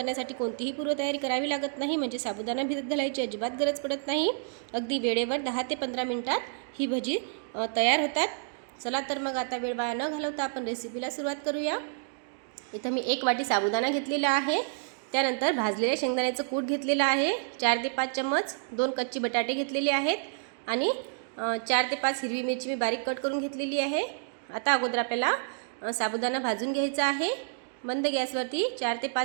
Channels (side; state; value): left; silent; digital silence